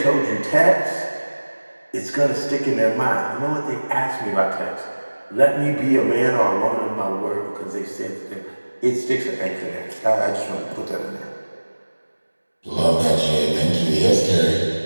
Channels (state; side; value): inverted; both; correlation -1.00